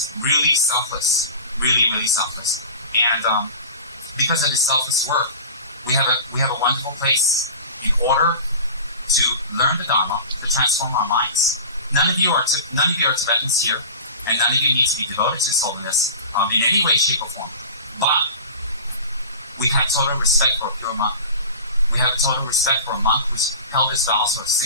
really selfless, really, really selfless. And because of his selfless work, we have a wonderful place in order to learn the Dharma, to transform our minds. None of you are Tibetans here, and none of you need to be devoted to His Holiness in any way, shape, or form. But we have total respect for a pure monk. We have total respect for a monk who's held his vows for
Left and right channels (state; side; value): inverted; both; correlation -0.36